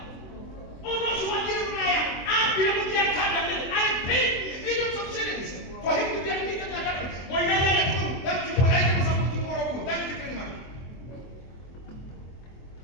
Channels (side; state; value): right; late; 23 ms